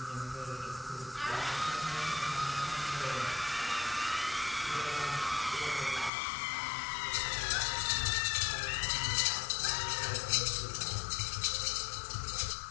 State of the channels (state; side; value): drops out; right; at 6.1 s